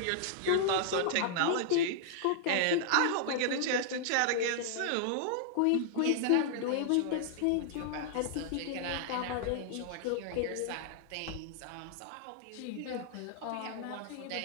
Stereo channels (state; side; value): different; both; correlation -0.01